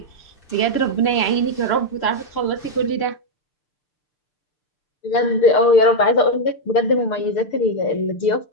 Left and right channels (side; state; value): right; late; 6.7 ms